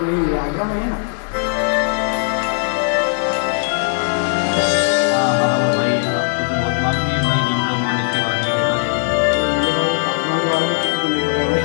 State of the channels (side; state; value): right; silent; digital silence